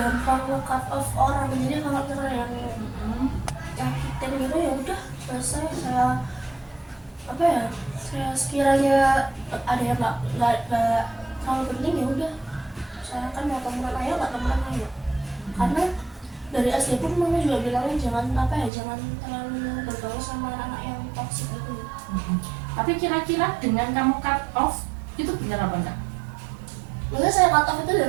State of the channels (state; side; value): drops out; left; at 18.7 s